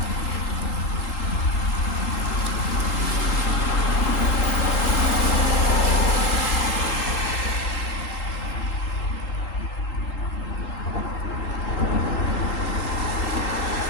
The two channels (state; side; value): late; right; 3.8 ms